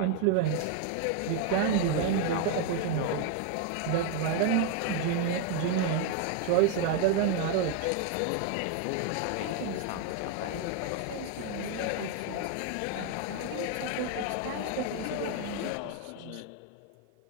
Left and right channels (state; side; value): different; both; correlation 0.01